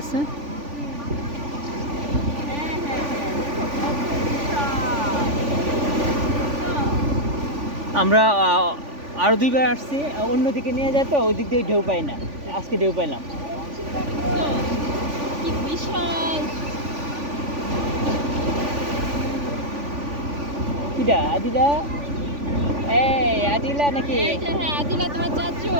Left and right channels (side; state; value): left; late; 3.5 ms